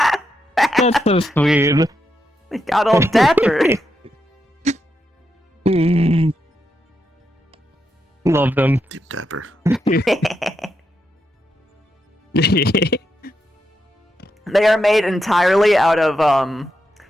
That's so sweet. They got all dapper. Love them. Deep dapper. They are made entirely out of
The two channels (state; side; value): normal; both; correlation 0.84